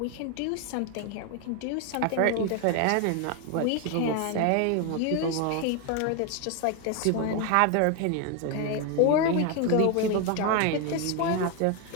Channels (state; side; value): different; both; correlation 0.01